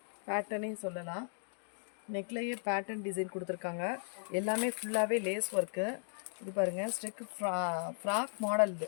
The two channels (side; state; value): right; silent; digital silence